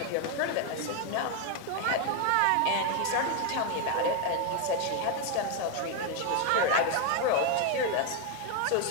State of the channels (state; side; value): different; both; correlation 0.01